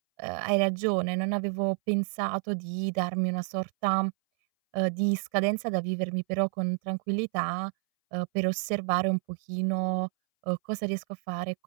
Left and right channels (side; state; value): left; silent; 58 dB below the other